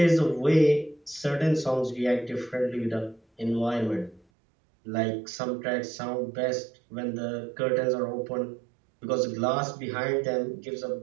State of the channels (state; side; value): drops out; left; at 4.2 s